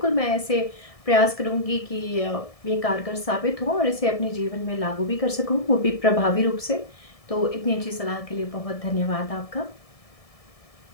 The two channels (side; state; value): right; late; 1.7 ms